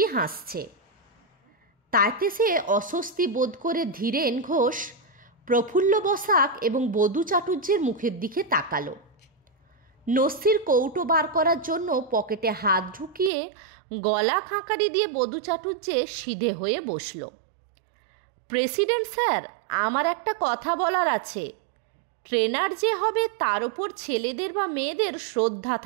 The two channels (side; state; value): left; drops out; at 13.3 s